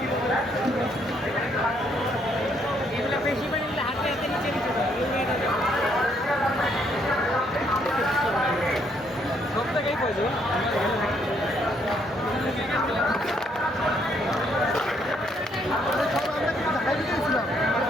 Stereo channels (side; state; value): both; normal; correlation 0.70